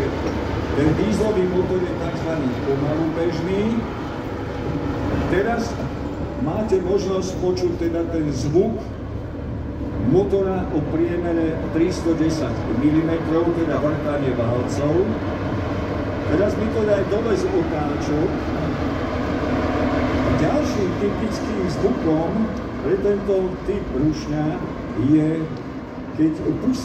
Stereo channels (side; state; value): both; identical; correlation 1.00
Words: ten dieselový motor je tzv. Pomalu bežný. Teraz máte možnosť počuť teda ten zvuk motora o priemere 310 mm, teda vrtanie válcov. Teraz mi to daj dole z otáčok. Ďalším typickým zvukom pre tento typ rušňa je, keď